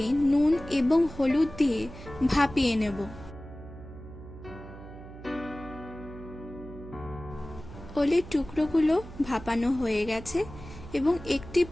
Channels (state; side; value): noise; right; hum, 15 dB below the sound